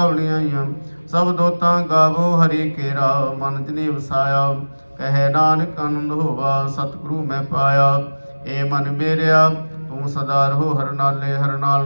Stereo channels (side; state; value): both; inverted; correlation -1.00